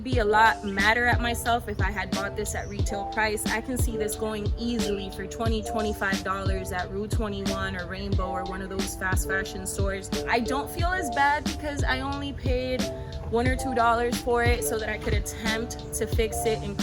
be a lot madder at myself if I had bought this at retail price. I can see this going easily for $20-$25 at Rue 21 or Rainbow or one of those fast fashion stores. I don't feel as bad because I only paid $1 or $2 for it so that I could attempt to fix it and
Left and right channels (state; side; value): identical; both; correlation 1.00